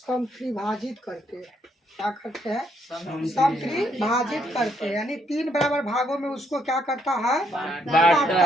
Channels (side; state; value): both; normal; correlation 0.72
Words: करते हैं। क्या करते हैं? समत्रिभाजित करते हैं, यानी तीन बराबर भागों में उसको क्या करता है?